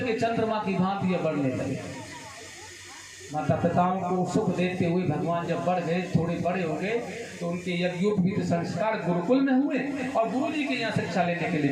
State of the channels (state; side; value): identical; both; correlation 1.00